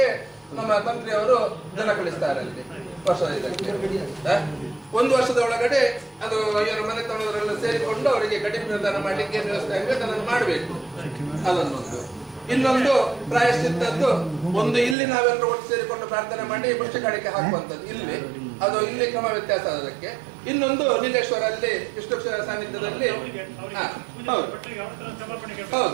ನಮ್ಮ ತಂತ್ರಿಯವರು ಜನ ಕಳಿಸ್ತಾರೆ ಅಲ್ಲಿ ವರ್ಷದ ಇದಕ್ಕೆ. ಒಂದು ವರ್ಷದ ಒಳಗಡೆ ಅದು ಇವರ ಮನೆತನದವರೆಲ್ಲ ಸೇರಿಕೊಂಡು ಅವರಿಗೆ ಗಡಿ ಪ್ರದಾನ ಮಾಡ್ಲಿಕ್ಕೆ ಏನು ವ್ಯವಸ್ಥೆ ಆಗಬೇಕು ಅದನ್ನು ಮಾಡಬೇಕು. ಅದನ್ನೊಂದು. ಇನ್ನೊಂದು ಪ್ರಾಯಶ್ಚಿತ್ತದ್ದು, ಒಂದು ಇಲ್ಲಿ ನಾವೆಲ್ಲರೂ ಒಟ್ಟು ಸೇರಿಕೊಂಡು ಪ್ರಾರ್ಥನೆ ಮಾಡಿ ಮುಷ್ಟಿ ಕಾಣಿಕೆ ಹಾಕುವಂಥದ್ದು ಇಲ್ಲಿ, ಅದು ಇಲ್ಲಿ ಕ್ರಮ ವ್ಯತ್ಯಾಸ ಅದಕ್ಕೆ. ಇನ್ನೊಂದು ನೀಲೇಶ್ವರ ಅಲ್ಲಿ ವಿಷ್ಣು ಸಾನ್ನಿಧ್ಯದಲ್ಲಿ, ಹೌದು ಹೌದು,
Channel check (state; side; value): drops out; left; at 15.0 s